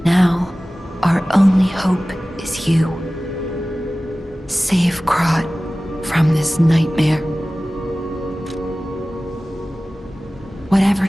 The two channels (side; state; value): both; normal; correlation 0.97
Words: Now, our only hope is you. Save Krat from this nightmare. Whatever